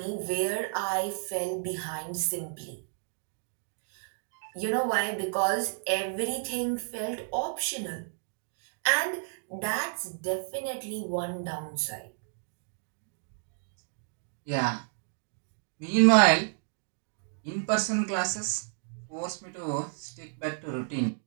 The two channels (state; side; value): silent; left; digital silence